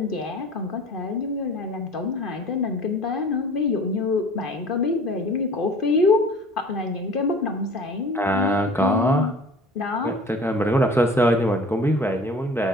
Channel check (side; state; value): both; normal; correlation 0.45